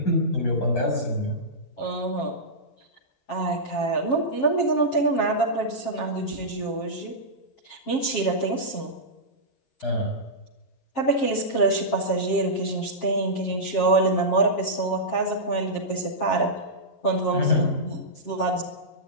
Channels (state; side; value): late; right; 7.4 ms